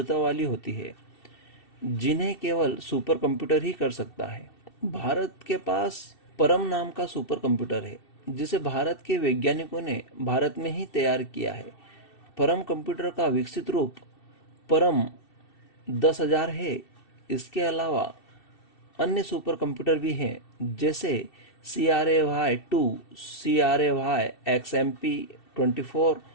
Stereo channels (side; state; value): right; late; 2.7 ms